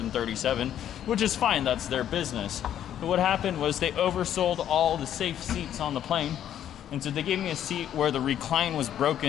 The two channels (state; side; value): quieter; right; 10.5 dB